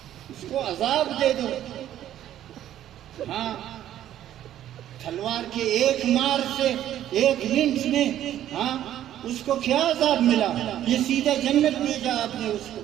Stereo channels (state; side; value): quieter; left; 11.8 dB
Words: اس کو عذاب دے دو۔ ہاں تلوار کے ایک مار سے، ایک لنچ میں، ہاں اس کو کیا عذاب ملا؟ یہ سیدھا جنت بھیجا آپ نے